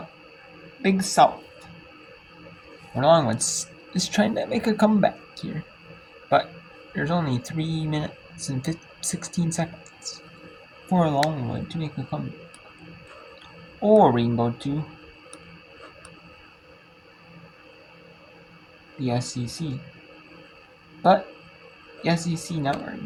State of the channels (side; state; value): both; identical; correlation 1.00